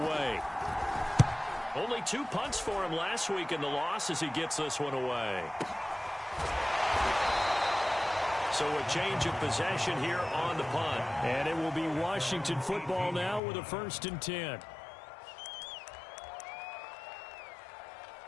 Only 2 punts for him last week in the loss as he gets this one away. So a change of possession here on the punt. And it will be Washington football now with a 1st and 10.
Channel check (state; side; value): drops out; right; at 13.4 s